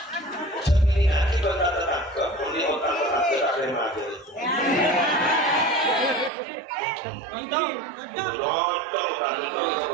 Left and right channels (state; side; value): drops out; left; at 6.3 s